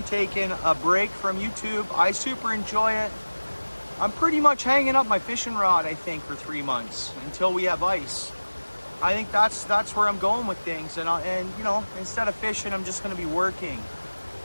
taking a break from YouTube. I super enjoy it. I'm pretty much hanging up my fishing rod, I think, for 3 months until we have ice. I think that's where I'm going with things. And instead of fishing, I'm just going to be working.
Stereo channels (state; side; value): inverted; both; correlation -1.00